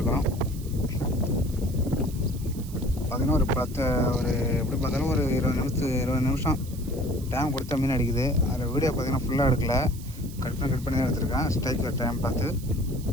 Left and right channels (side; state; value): right; noise; hiss, 18 dB below the sound